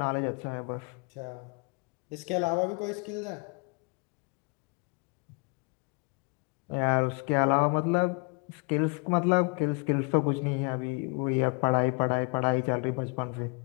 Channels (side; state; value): right; quieter; 34.1 dB